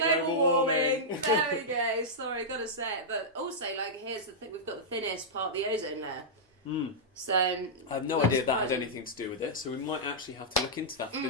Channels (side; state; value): both; normal; correlation -0.10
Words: global warming. There we go. Sorry, got to say it. But also, here's the thing: we've got the thinnest part of the ozone layer. So I have no idea that had anything to do with it, so we might actually have to look into that for the